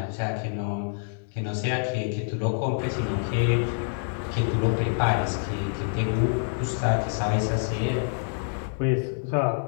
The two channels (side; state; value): right; silent; digital silence